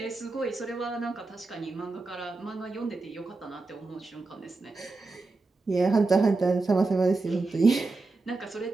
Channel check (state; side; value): quieter; left; 3.6 dB